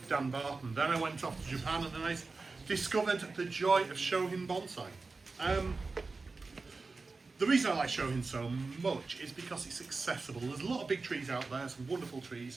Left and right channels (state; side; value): quieter; left; 3.9 dB